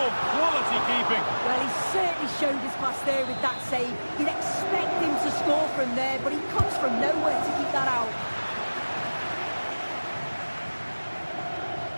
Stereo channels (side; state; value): both; inverted; correlation -1.00